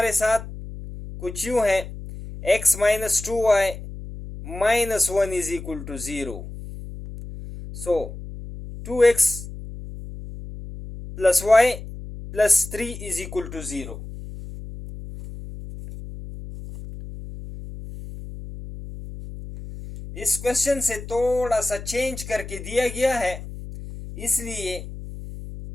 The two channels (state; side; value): noise; left; hum, 11 dB below the sound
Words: साथ कुछ यूं है, x minus 2y minus 1 is equal to 0। So 2x plus y plus 3 is equal to 0। इस क्वेश्चन से थोड़ा सा चेंज करके दिया गया है, इसलिए